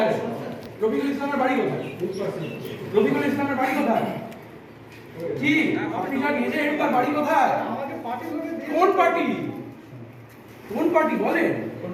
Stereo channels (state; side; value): identical; both; correlation 1.00